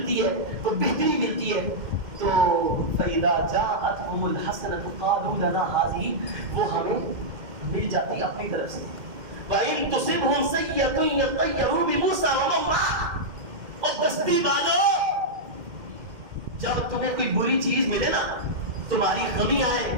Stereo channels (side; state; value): left; late; 2.1 ms